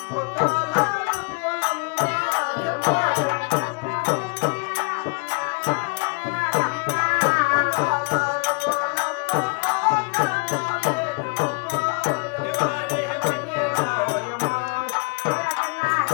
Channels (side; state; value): right; quieter; 31.9 dB